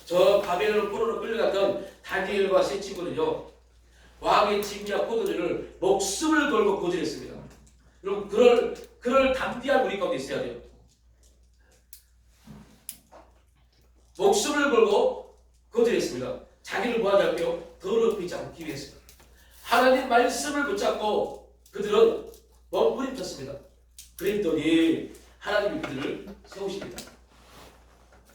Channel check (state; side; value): identical; both; correlation 1.00